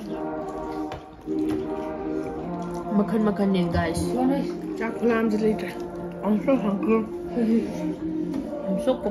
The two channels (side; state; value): both; identical; correlation 1.00